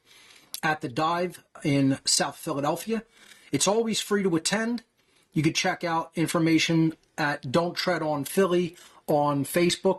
at the Dive in South Philadelphia. It's always free to attend. You can check out information at Don't Tread on Philly on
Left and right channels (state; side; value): identical; both; correlation 1.00